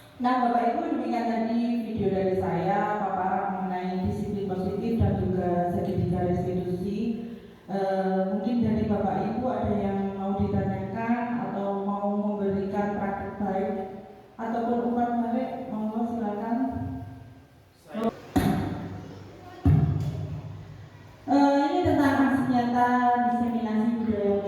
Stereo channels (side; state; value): both; identical; correlation 1.00